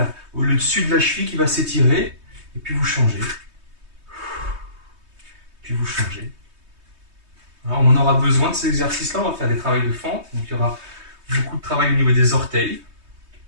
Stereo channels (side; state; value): left; late; 3.2 ms